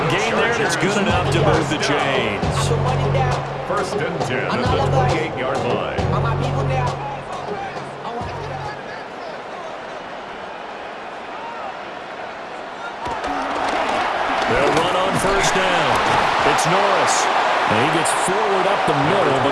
gain there, and it's good enough to move the chains. First and 10 at the 28-yard line. They'll run on first down. It's Norris. And he gets forward up the middle, but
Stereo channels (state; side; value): identical; both; correlation 1.00